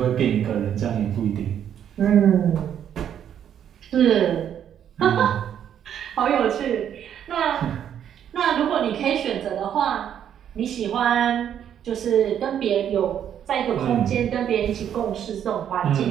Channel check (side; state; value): left; quieter; 9.5 dB